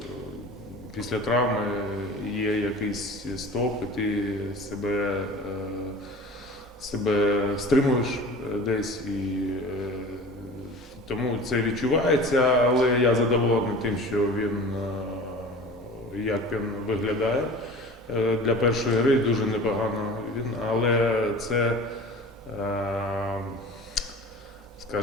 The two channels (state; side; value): normal; both; correlation 0.39